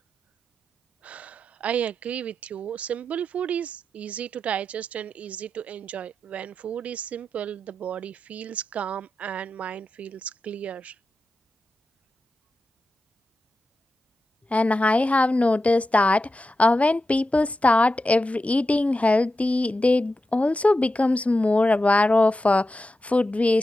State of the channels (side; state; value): both; normal; correlation 0.90